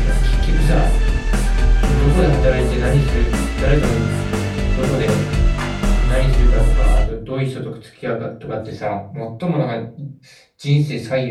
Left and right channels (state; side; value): identical; both; correlation 1.00